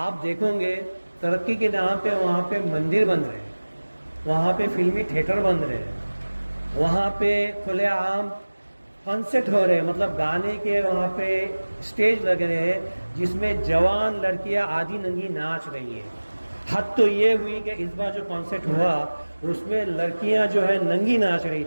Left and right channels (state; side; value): inverted; both; correlation -1.00